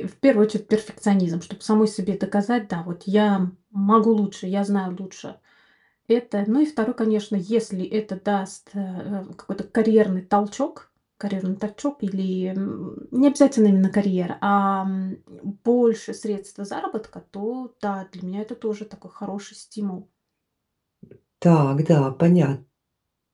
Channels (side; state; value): both; identical; correlation 1.00